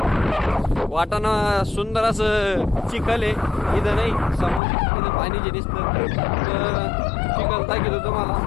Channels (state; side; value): drops out; right; at 4.6 s